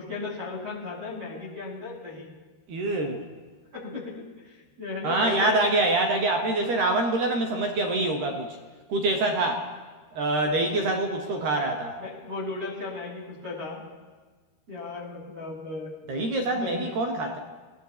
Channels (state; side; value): late; left; 13 ms